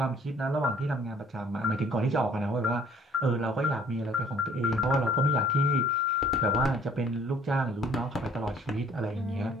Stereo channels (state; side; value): normal; both; correlation 0.56